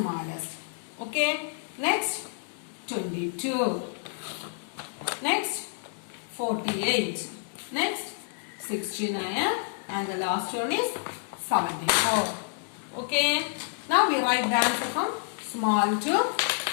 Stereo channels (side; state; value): right; silent; digital silence